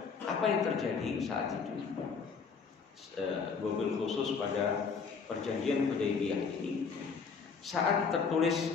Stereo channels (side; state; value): right; quieter; 5.5 dB